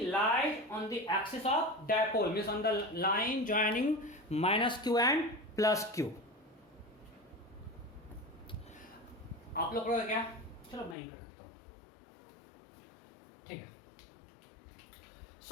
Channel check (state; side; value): drops out; right; at 11.0 s